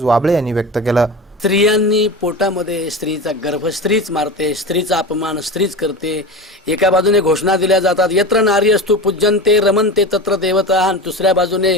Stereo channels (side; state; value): both; normal; correlation 0.28